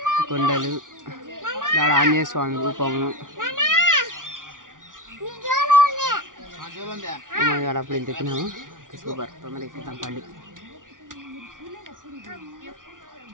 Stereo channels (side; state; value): left; late; 0.88 ms